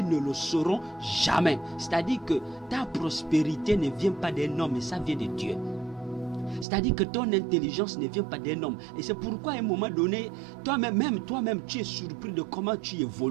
le sauront jamais. C'est-à-dire que ta prospérité ne vient pas d'un homme, mais ça vient de Dieu. C'est-à-dire que ton intelligence ne vient pas d'un homme. Et c'est pourquoi à un moment donné, toi-même, tu es surpris de comment tu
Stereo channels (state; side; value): drops out; left; at 6.7 s